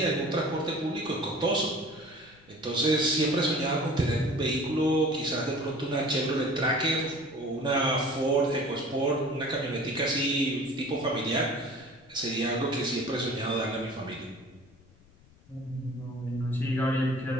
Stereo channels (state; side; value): noise; left; rumble, 27 dB below the sound